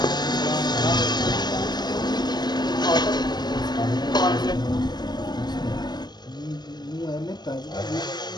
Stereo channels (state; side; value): late; right; 0.20 ms